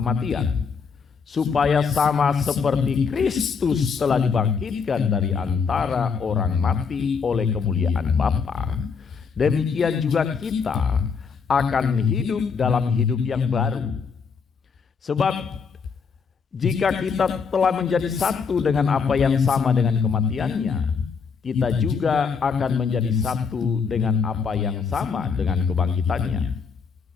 supaya sama seperti Kristus telah dibangkitkan dari antara orang mati oleh kemuliaan Bapa, demikian juga kita akan hidup dalam hidup yang baru. Sebab jika kita telah menjadi satu dengan apa yang sama dengan kematiannya, kita juga akan menjadi satu dengan apa yang sama dengan kebangkitannya.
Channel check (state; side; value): quieter; right; 5.7 dB